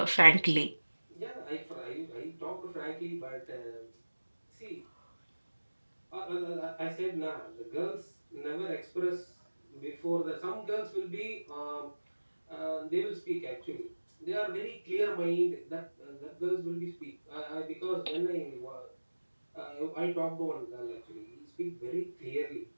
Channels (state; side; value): inverted; both; correlation -1.00